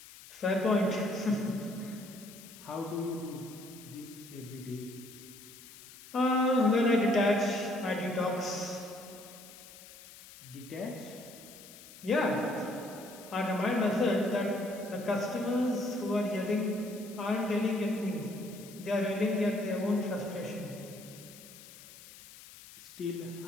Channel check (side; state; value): left; noise; hiss, 18 dB below the sound